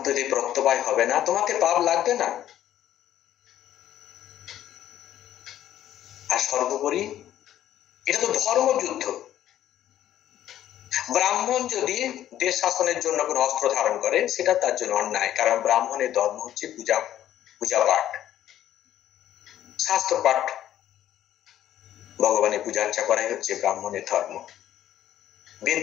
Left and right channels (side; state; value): right; quieter; 12.0 dB